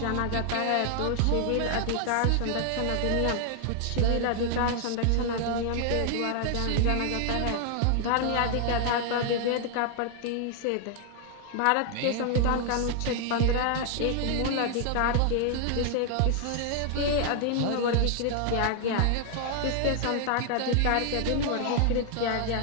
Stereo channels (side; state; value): both; different; correlation 0.00